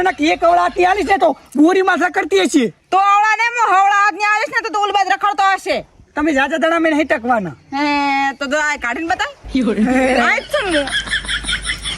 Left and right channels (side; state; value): both; identical; correlation 1.00